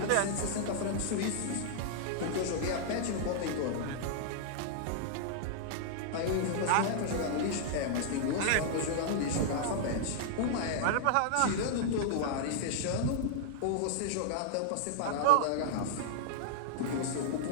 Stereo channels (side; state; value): both; different; correlation -0.01